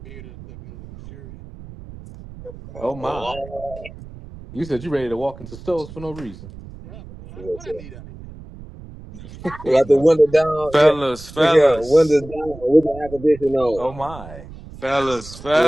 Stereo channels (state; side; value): noise; right; rumble, 16 dB below the sound